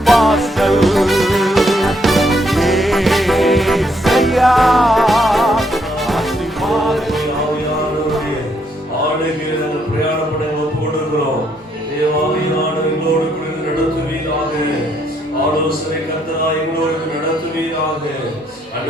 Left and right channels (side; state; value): both; normal; correlation 0.73